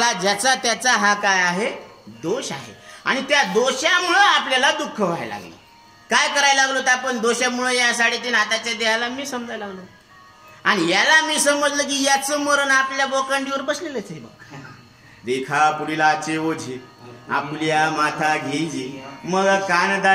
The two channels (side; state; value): both; identical; correlation 1.00